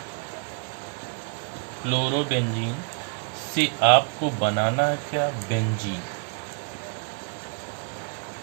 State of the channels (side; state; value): left; quieter; 35.9 dB